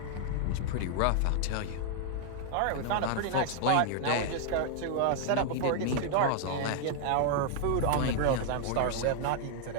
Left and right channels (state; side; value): different; both; correlation 0.00